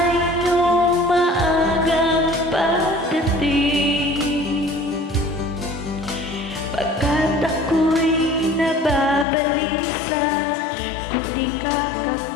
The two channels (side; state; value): right; drops out; at 9.2 s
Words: iyong maagang pagdating. Pagkat ako'y nababalisa kung di ka